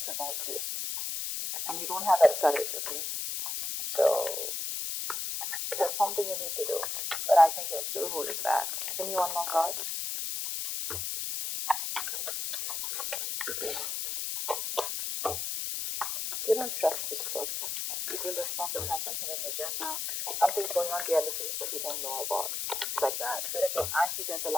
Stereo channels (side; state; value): left; noise; hiss, 2 dB below the sound